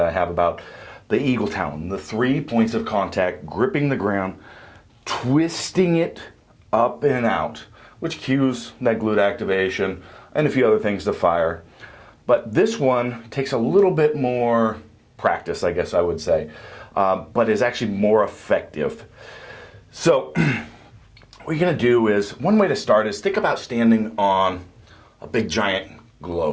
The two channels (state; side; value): identical; both; correlation 1.00